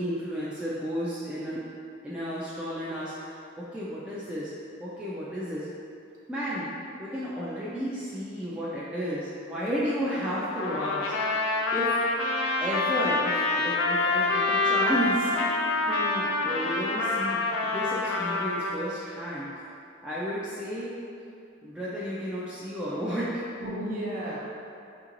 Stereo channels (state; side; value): normal; both; correlation 0.22